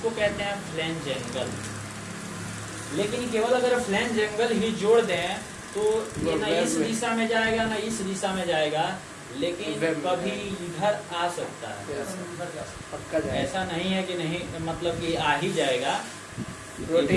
कहते हैं फ्लैंज एंगल। लेकिन केवल अगर फ्लैंज एंगल ही जोड़ दें तो ये ना इस दिशा में जाएगा ना इस दिशा में जाएगा, लेकिन कभी इधर आ सकता है। ऐसा नहीं है कि नहीं, मतलब कि आ ही जाएगा,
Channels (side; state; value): both; identical; correlation 1.00